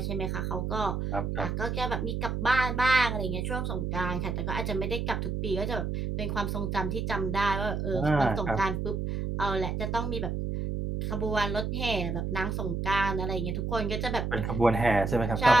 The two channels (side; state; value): right; noise; hum, 2 dB below the sound